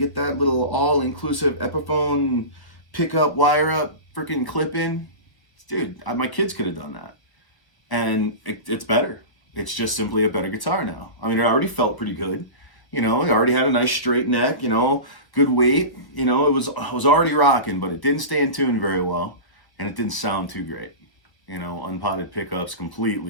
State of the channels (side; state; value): right; late; 1.3 ms